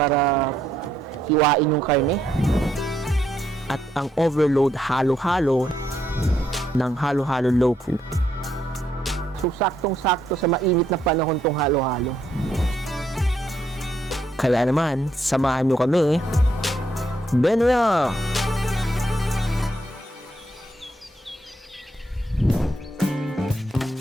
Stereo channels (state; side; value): normal; both; correlation 0.75